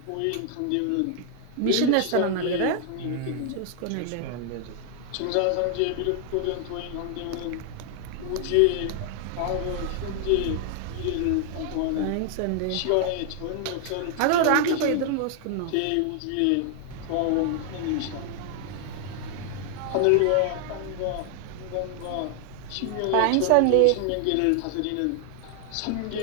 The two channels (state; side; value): different; both; correlation 0.00